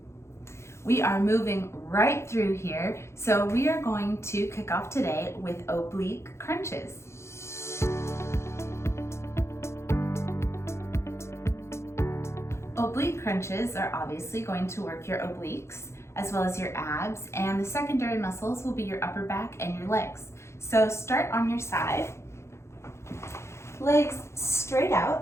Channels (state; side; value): late; right; 0.13 ms